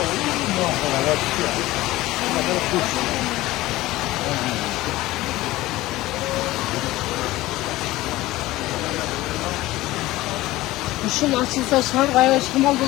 Işın açılsa şar gayet şımal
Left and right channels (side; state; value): right; quieter; 17.7 dB